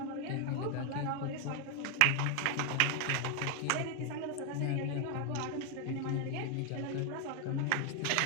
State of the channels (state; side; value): different; both; correlation 0.00